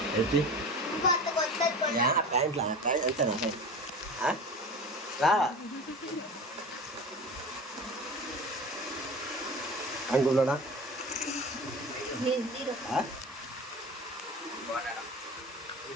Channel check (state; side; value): normal; both; correlation 0.34